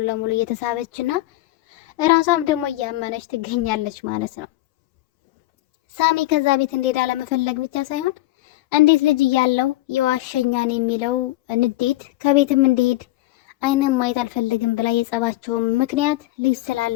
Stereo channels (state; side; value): quieter; right; 17.4 dB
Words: ለሙሉ እየተሳበችና እራሷም ደግሞ እያመነች ትገኛለች ማለት ነው። ሳሚ ከዛ ቤት እንዴት አለመፈለግ ብቻ ሳይሆን እንዴት ልጅ እያለው የዋሸኛን የሚለው ንዴት ከቤትም እንዲሄድ አይንም ማየት አልፈልግም ብላ የጸባቸውም ምክንያት ልጅ